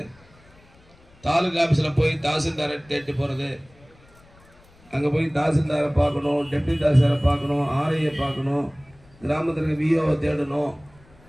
தாலுகா ஆஃபீஸில் போய் தாசில்தாரை தேடி போகிறது, அங்கே போய் தாசில்தாரை பார்க்கணும், டெப்டி தாசில்தாரை பார்க்கணும், ஆர்ஐயை பார்க்கணும், கிராமத்திற்கு விஓவை தேடணும்,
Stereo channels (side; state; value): left; noise; rumble, 28 dB below the sound